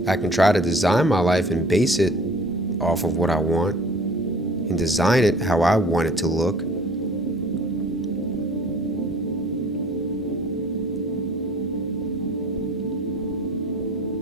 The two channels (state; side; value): normal; both; correlation 0.49